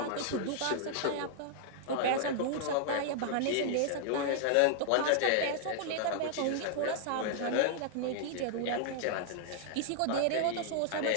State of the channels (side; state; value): both; different; correlation -0.01